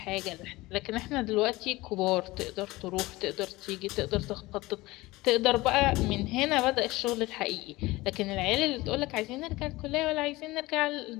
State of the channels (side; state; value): right; quieter; 20.1 dB